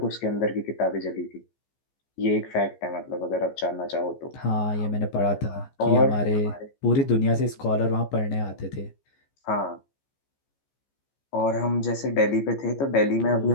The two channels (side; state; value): right; late; 15 ms